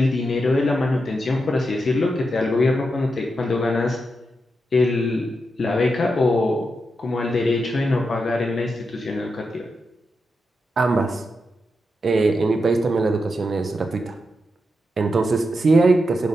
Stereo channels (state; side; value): normal; both; correlation 0.86